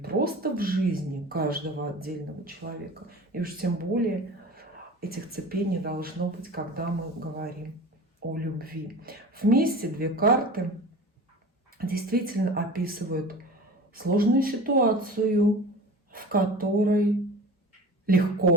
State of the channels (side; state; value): both; normal; correlation 0.37